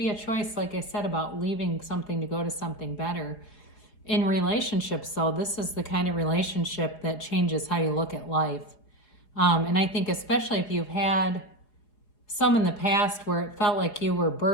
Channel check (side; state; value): right; late; 4.9 ms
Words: a choice, like I said, about leaving something to go to something better. In relationships, though, this is the kind of relationship that changes how you look at life. And I think especially if you've had some in the past where it felt like you were